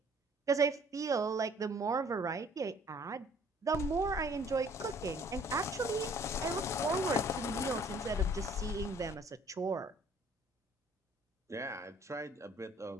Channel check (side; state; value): both; normal; correlation 0.57